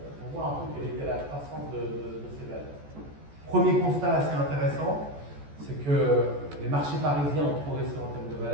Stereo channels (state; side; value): late; left; 14 ms